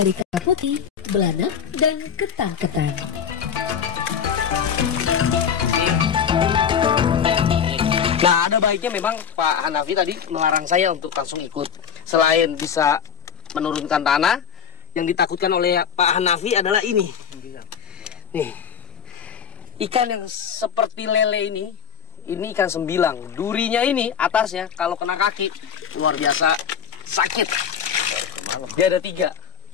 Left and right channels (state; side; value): quieter; right; 7.6 dB